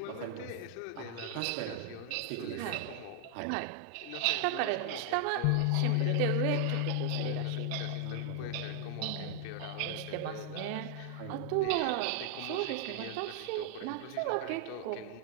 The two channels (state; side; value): different; both; correlation 0.00